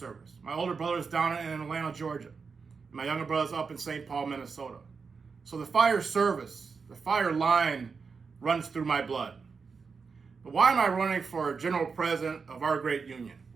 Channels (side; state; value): left; quieter; 5.2 dB